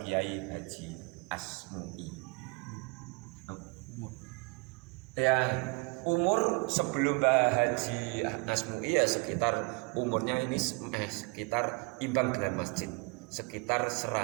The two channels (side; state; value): left; quieter; 28.8 dB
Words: Kiai Haji Asmui. Ya, umur sebelum Mbah Haji Asmui ya sekitar umurnya ini sekitar imbang dengan masjid, sekitar